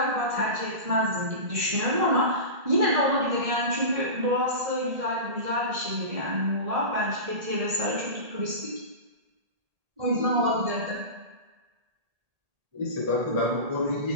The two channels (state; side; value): late; left; 1.8 ms